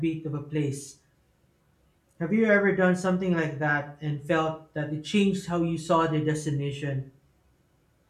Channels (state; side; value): identical; both; correlation 1.00